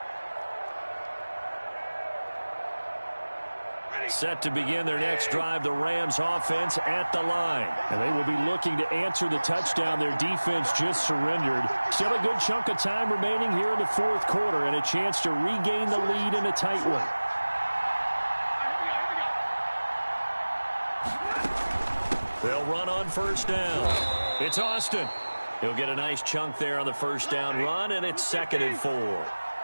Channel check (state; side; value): inverted; both; correlation -1.00